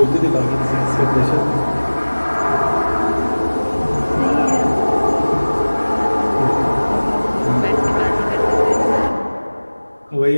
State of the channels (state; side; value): inverted; both; correlation -1.00